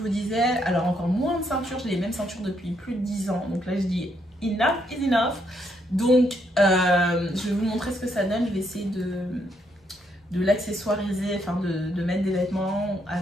disais, alors encore moins de ceinture, j'ai les mêmes ceintures depuis plus de 10 ans, donc là je dis enough is enough. Donc je vais vous montrer ce que ça donne, je vais essayer de l'accessoiriser, enfin de mettre des vêtements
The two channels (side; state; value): both; normal; correlation 0.75